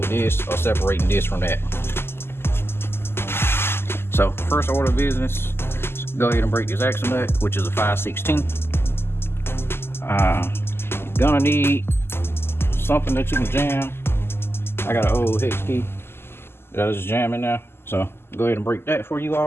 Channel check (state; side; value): late; right; 0.12 ms